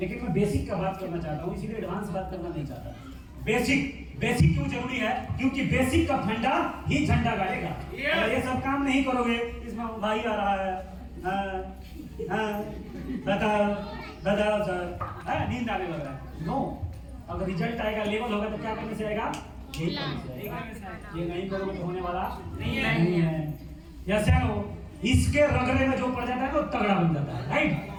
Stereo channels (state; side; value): identical; both; correlation 1.00